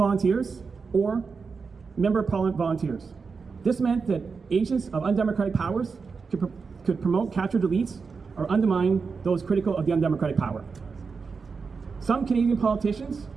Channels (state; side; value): quieter; left; 5.1 dB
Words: or member of parliament volunteers. This meant that agents of undemocratic powers could promote captured elites or undermine those critical of the undemocratic power. Some Canadian politicians